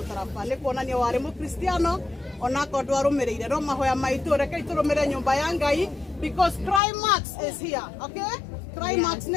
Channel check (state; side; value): drops out; right; at 6.8 s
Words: nĩ kuonania warĩ mũkristiano onako ndwarũmĩrĩire no mahoya maitũ rekei tũrũmĩrĩre nyũmba ya Ngai because climax is here, okay? Climax